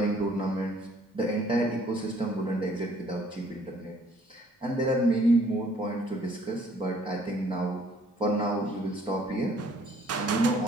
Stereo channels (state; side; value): normal; both; correlation 0.61